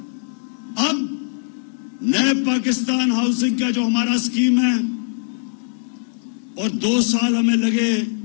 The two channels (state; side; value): silent; right; 61 dB below the other